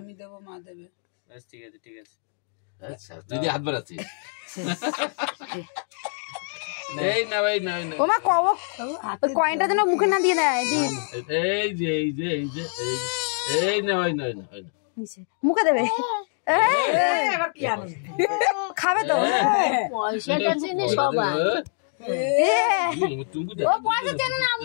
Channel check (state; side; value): silent; right; 62 dB below the other